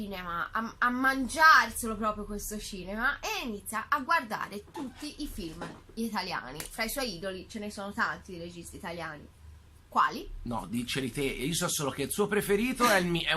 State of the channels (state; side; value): identical; both; correlation 1.00